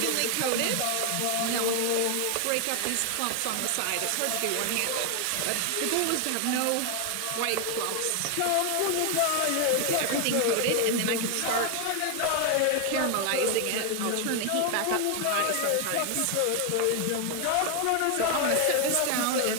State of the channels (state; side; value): different; both; correlation 0.01